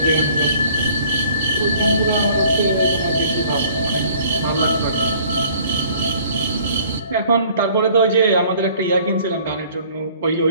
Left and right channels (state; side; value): inverted; both; correlation -0.54